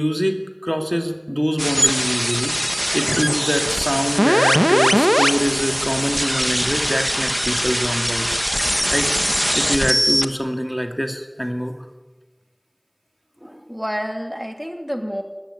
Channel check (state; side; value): identical; both; correlation 1.00